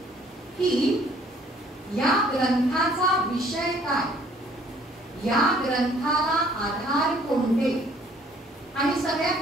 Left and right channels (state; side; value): normal; both; correlation 0.59